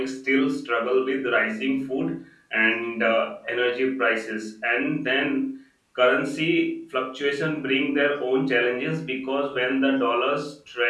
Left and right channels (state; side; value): identical; both; correlation 1.00